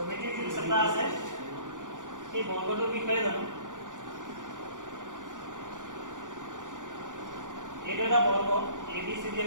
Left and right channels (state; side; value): late; left; 0.87 ms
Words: যিটো চেপ্টাৰ আছে সেই বৰ্গটোৰ বিষয়ে জানো এইটো এটা বৰ্গ ABCD